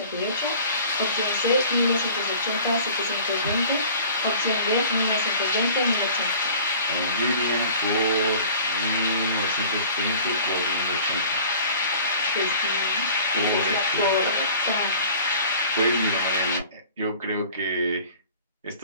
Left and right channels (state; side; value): inverted; both; correlation -0.46